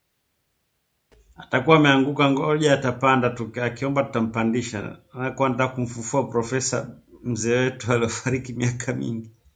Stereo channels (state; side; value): identical; both; correlation 1.00